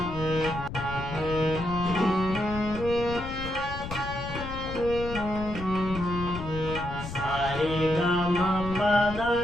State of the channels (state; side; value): noise; left; rumble, 9 dB below the sound